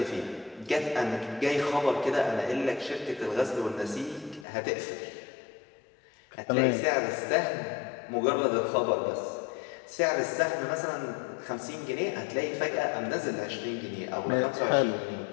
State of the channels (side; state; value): right; drops out; at 4.5 s